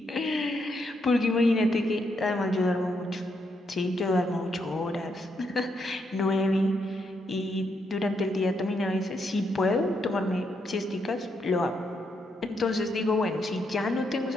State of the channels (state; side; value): normal; both; correlation 0.78